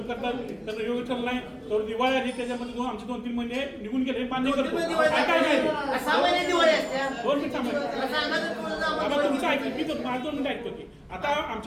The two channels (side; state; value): both; identical; correlation 1.00